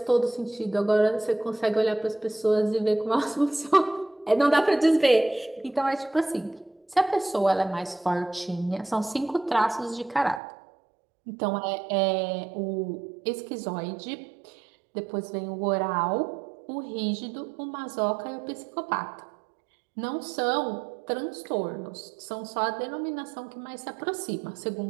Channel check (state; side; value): drops out; left; at 10.4 s